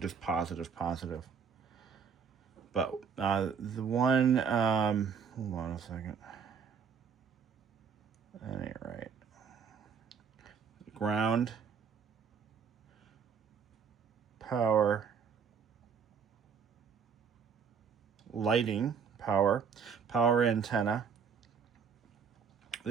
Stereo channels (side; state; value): left; quieter; 6.5 dB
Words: positive. But the one, hold on a second. That ain't right. Ground, power, lighting, power antenna.